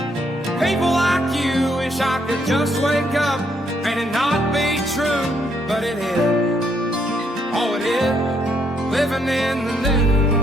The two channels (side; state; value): both; normal; correlation 0.72